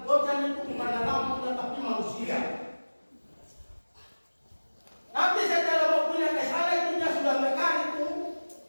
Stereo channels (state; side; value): inverted; both; correlation -1.00